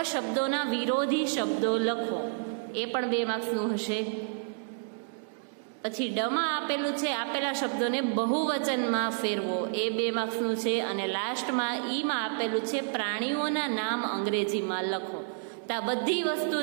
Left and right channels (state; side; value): silent; left; digital silence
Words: શબ્દોના વિરોધી શબ્દો લખો, એ પણ 2 માર્ક્સનું હશે. પછી ડમાં આપેલું છે આપેલા શબ્દોને બહુવચનમાં ફેરવો, એ 2 માર્ક્સનું છે. અને લાસ્ટમાં ઈમાં આપેલું છે પ્રાણીઓના નામ અંગ્રેજીમાં લખો. તો આ બધી વસ્તુ